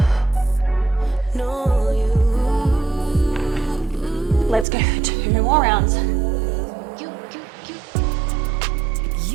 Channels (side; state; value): left; drops out; at 4.7 s